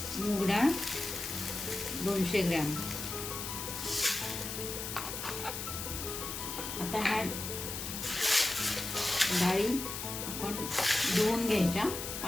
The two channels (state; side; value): noise; left; hiss, 5 dB below the sound